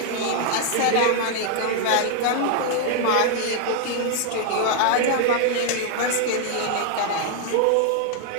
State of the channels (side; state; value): both; different; correlation 0.00